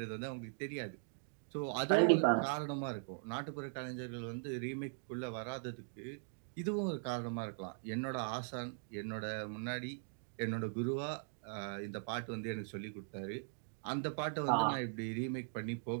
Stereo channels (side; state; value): left; silent; digital silence